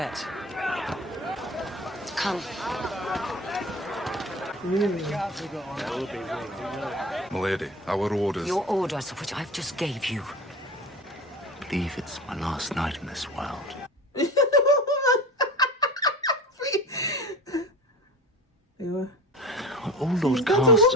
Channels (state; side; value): normal; both; correlation 0.34